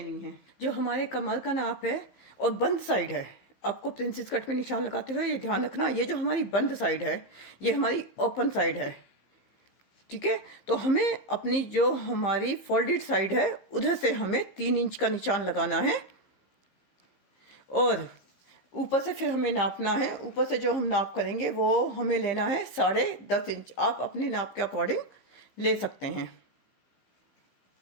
है। जो हमारे कमर का नाप है और बंद साइड है, आपको प्रिंसेस कट में निशान लगाते हुए ये ध्यान रखना, ये जो हमारी बंद साइड है ये हमारी ओपन साइड है, ठीक है। तो हमें अपनी जो हमारी फोल्डेड साइड है उधर से हमें 3 इंच का निशान लगाना है और ऊपर से फिर हमें नापना है। ऊपर से जो हम नाप करेंगे वो हमें लेना है 10.5 इंच। आप अपने नाप के अकॉर्डिंग ले सकते हैं।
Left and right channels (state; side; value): late; right; 15 ms